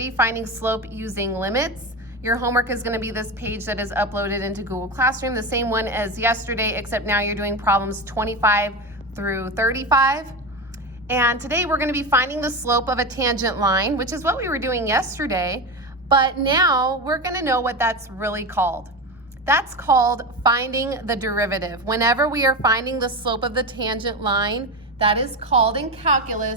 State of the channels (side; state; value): both; normal; correlation 0.20